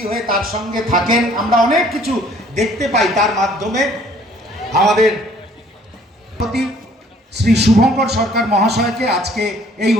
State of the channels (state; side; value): normal; both; correlation 0.58